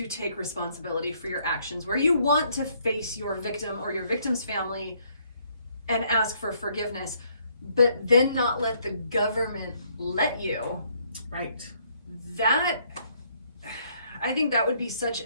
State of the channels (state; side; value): inverted; both; correlation -0.68